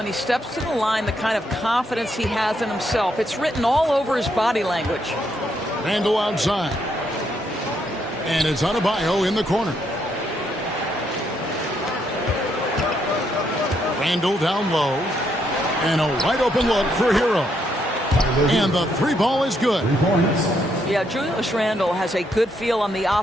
he steps to the line the kind of confidence he has in himself. It's written all over his body language. Randall outside. And it's Adebayo in the corner. Randle down low. And a wide open look for Hero. And the three ball is good. 3 points. Yeah, Julius Randle has a good feel on the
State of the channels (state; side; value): normal; both; correlation 0.75